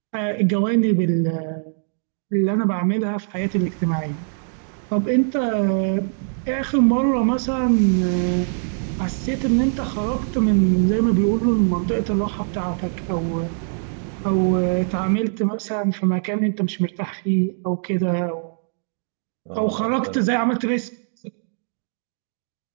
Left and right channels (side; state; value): left; silent; digital silence